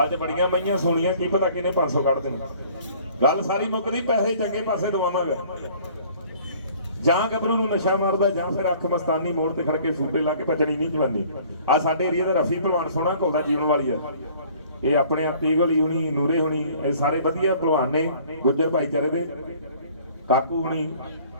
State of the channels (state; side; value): inverted; both; correlation -0.53